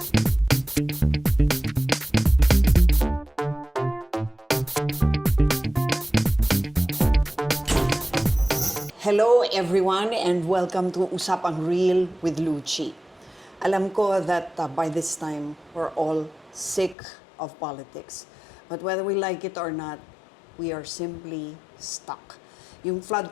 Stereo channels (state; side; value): drops out; right; at 16.9 s